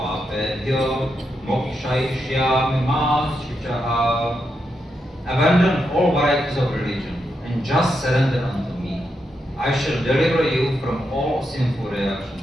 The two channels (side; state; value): both; normal; correlation 0.84